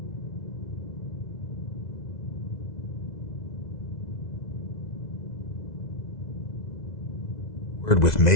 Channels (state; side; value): late; right; 2.0 ms